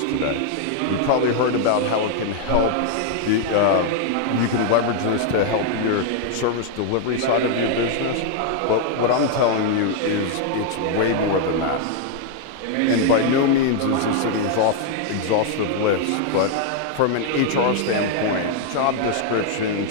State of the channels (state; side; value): different; both; correlation 0.00